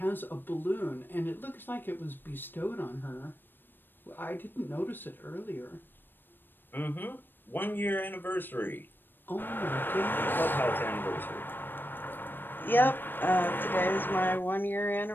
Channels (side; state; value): right; late; 0.095 ms